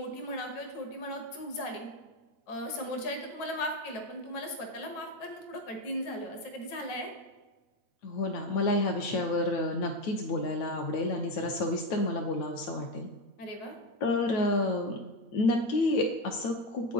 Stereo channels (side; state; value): right; late; 9.2 ms